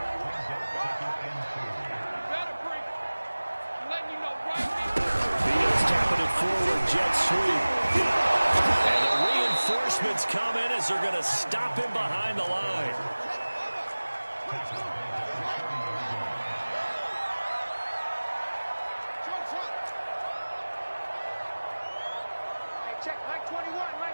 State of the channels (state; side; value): inverted; both; correlation -1.00